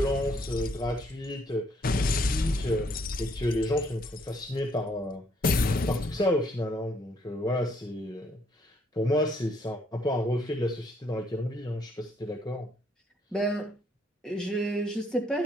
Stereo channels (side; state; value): both; normal; correlation 0.69